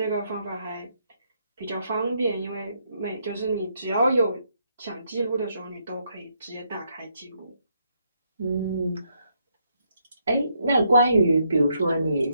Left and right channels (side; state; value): both; inverted; correlation -0.76